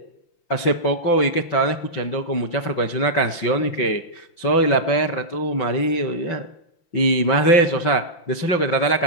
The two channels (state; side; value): late; right; 5.8 ms